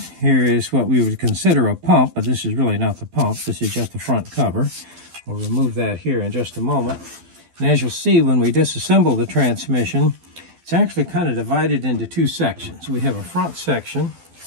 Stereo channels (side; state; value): left; late; 12 ms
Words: Here is what we would consider a pump, but this is really not the pump. This is just the front cover. We'll remove that here in just a moment. And as you'll see, when we disassemble the transmission, it's actually kind of divided into two sections. We have a front section,